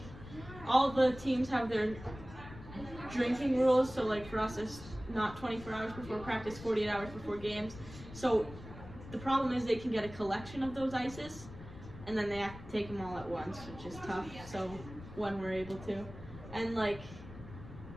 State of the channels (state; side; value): noise; left; rumble, 14 dB below the sound